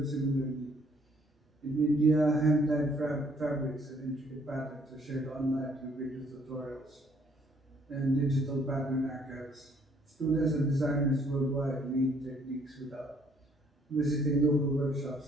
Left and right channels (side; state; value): both; normal; correlation 0.64